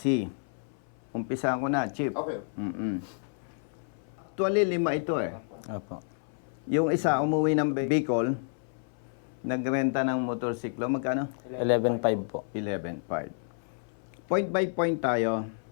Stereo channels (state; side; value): silent; right; 58 dB below the other